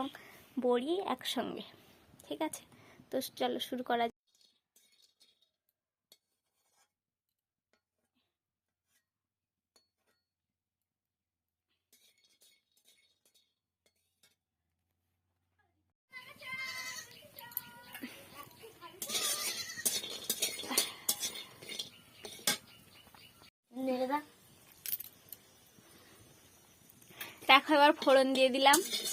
বড়ি একসঙ্গে। ঠিক আছে, তো চলো শুরু করা যাক। দেখো, এবার ফোড়ন দিয়ে দিলাম।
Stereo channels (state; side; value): identical; both; correlation 1.00